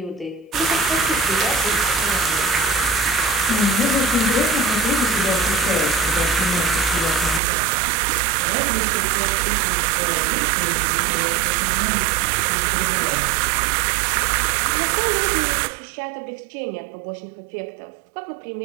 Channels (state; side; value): drops out; left; at 7.4 s